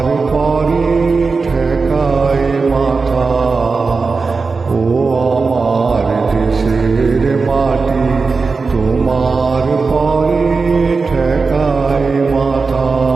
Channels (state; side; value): quieter; left; 4.4 dB